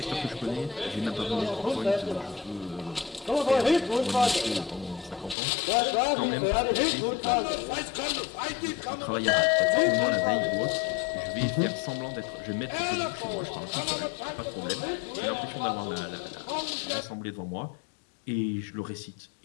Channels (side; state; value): right; drops out; at 5.4 s